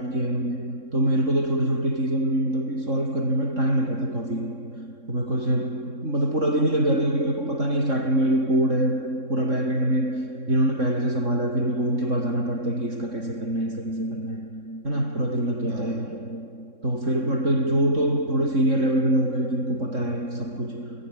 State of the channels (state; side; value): late; left; 3.6 ms